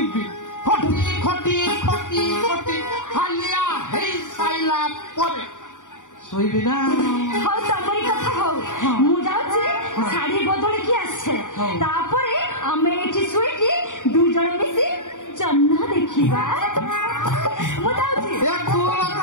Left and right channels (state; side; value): late; right; 0.87 ms